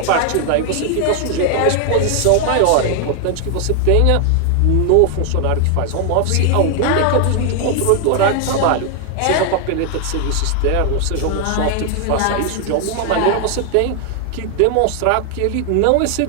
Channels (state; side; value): different; both; correlation 0.00